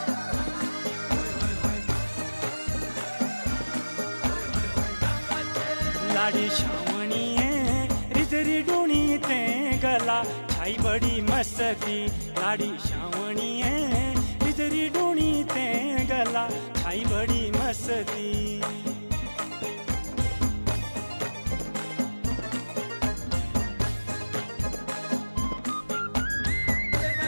लाडी श्रावणीये रिजरी डूणी ते गला छाई बड़ी मस्ती लाडी श्रावणीये रिजरी डूणी ते गला छाई बड़ी मस्ती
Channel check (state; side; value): inverted; both; correlation -1.00